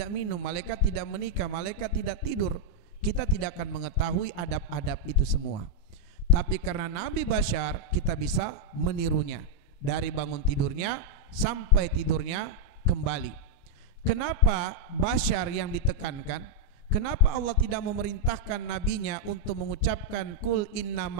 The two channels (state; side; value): late; right; 29 ms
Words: minum, malaikat tidak menikah, malaikat tidak tidur. Kita tidak akan mengetahui adab-adab itu semua. Tapi karena Nabi bashar, kita bisa menirunya dari bangun tidurnya sampai tidurnya kembali. Kenapa bashar yang ditekankan? Kenapa Allah tidak memerintahkan nabinya untuk mengucapkan kul